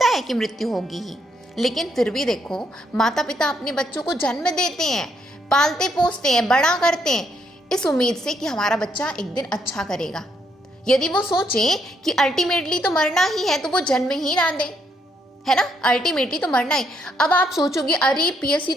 है कि मृत्यु होगी ही, लेकिन फिर भी देखो माता पिता अपने बच्चों को जन्म देते हैं, पालते पोसते हैं, बड़ा करते हैं इस उम्मीद से कि हमारा बच्चा एक दिन अच्छा करेगा। यदि वो सोचे कि अल्टीमेटली तो मरना ही है तो वो जन्म ही ना दे, है ना, अल्टीमेटली तो मरना ही। अब आप सोचोगे अरे पीएससी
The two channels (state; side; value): normal; both; correlation 0.74